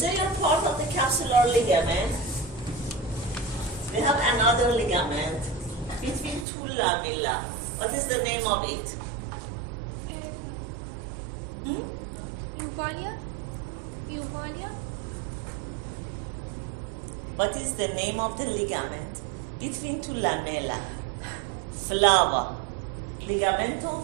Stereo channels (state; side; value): drops out; left; at 6.5 s